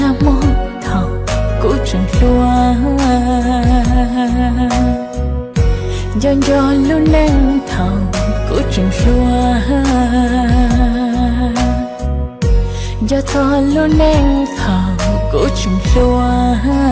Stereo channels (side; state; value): both; identical; correlation 1.00